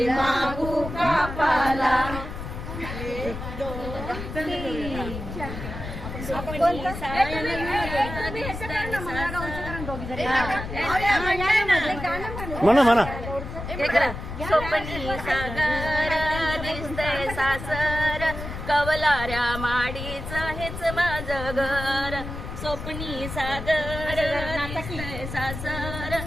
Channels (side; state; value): left; noise; rumble, 8 dB below the sound